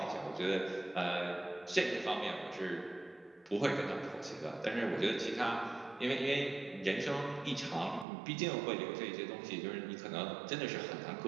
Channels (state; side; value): drops out; left; at 8.1 s